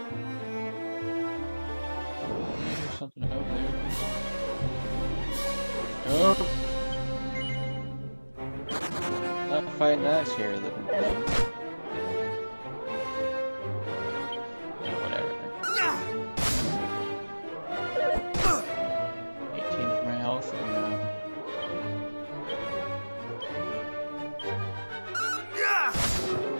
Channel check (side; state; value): both; inverted; correlation -1.00